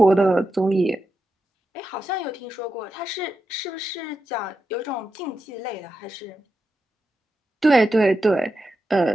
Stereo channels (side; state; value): both; normal; correlation 0.88